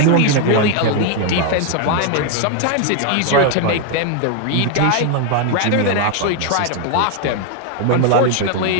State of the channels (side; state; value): both; different; correlation 0.01